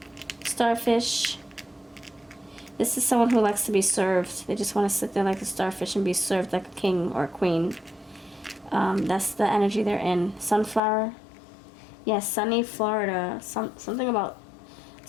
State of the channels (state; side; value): drops out; right; at 10.8 s